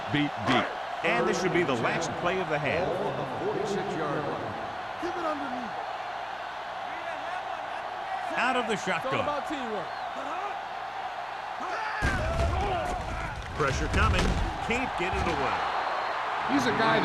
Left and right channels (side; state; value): both; identical; correlation 1.00